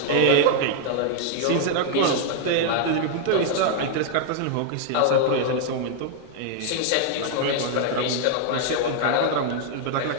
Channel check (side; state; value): both; different; correlation 0.00